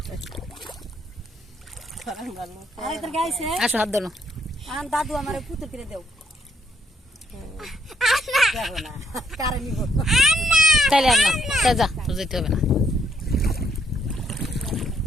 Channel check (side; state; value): both; normal; correlation 0.71